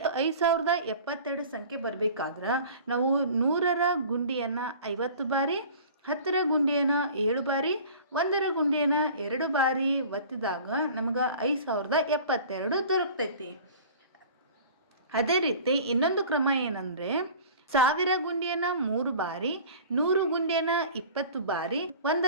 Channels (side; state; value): both; inverted; correlation -0.43